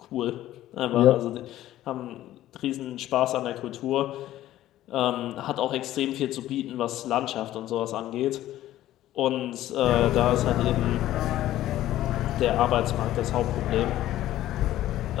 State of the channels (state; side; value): quieter; right; 14.0 dB